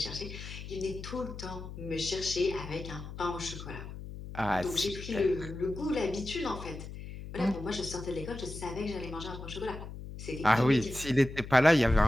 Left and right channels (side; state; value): left; noise; hum, 11 dB below the sound